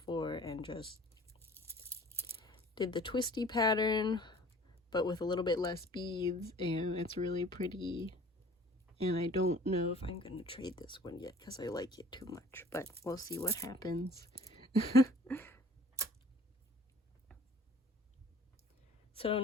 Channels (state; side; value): normal; both; correlation 0.49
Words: and just did the twisty pattern, but with a little bit less beads, and it's really pretty. And I don't know if I'm gonna trade this one yet because I like it too much, but we'll see what happens. So